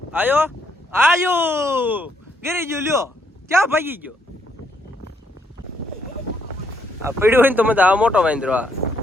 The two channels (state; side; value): normal; both; correlation 0.74